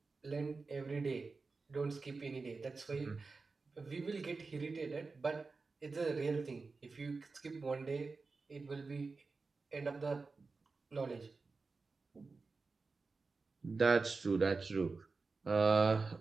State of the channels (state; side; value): quieter; left; 4.1 dB